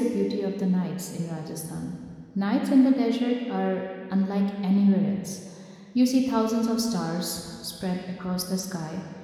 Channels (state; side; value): identical; both; correlation 1.00